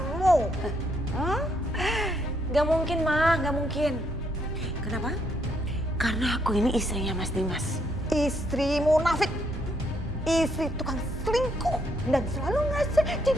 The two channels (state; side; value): normal; both; correlation 0.73